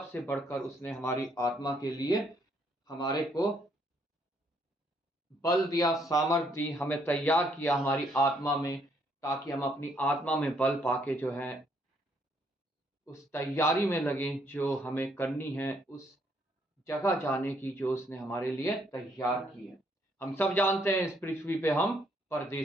बढ़कर उसने हमारी आत्मा के लिए हमारे को बल दिया, सामर्थ दी, हमें तैयार किया हमारी आत्मा में, ताकि हम अपनी आत्मा में बल पाके जो है उस तैयारी में लगे जो हमें करनी है, उस जगह जाने की जो उसने हमारे लिए तैयार की है। हम सब जानते हैं इस पृथ्वी पे हम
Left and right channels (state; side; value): normal; both; correlation 0.70